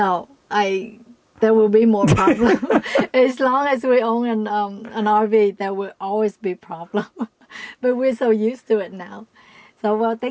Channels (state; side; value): identical; both; correlation 1.00